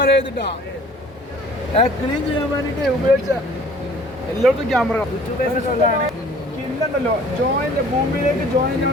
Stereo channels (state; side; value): normal; both; correlation 0.51